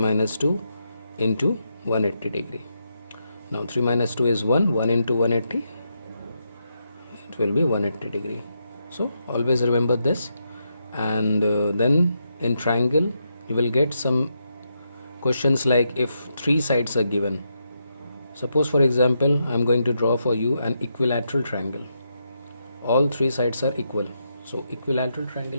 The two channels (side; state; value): both; inverted; correlation -0.82